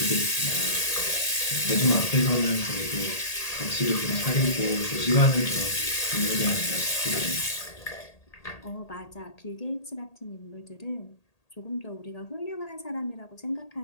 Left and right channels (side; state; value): right; late; 1.8 ms